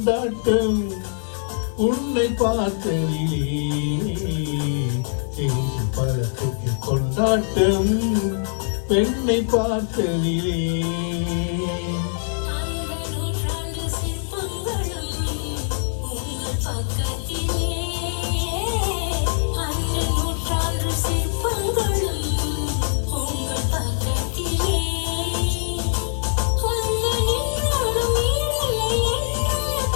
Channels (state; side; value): silent; right; digital silence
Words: உன்னை பார்த்து தெரிந்து பழத்துக்கு கொண்டாட்டம் பெண்ணை பார்த்து